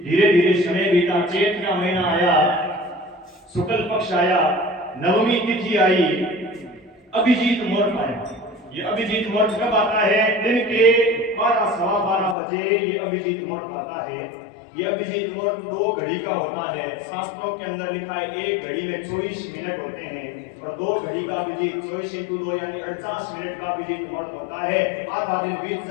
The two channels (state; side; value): drops out; right; at 12.4 s